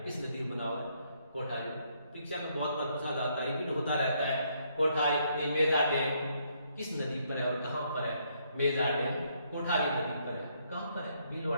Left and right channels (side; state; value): both; inverted; correlation -0.72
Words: इस नदी में बना हुआ है कोठारी। परीक्षा में बहुत बार पूछा जाता है, रिपीट होता रहता है, कोठारी मेजा डैम किस नदी पर है और कहां पर है। मेजा डैम कोठारी नदी पर है, कहां पर है,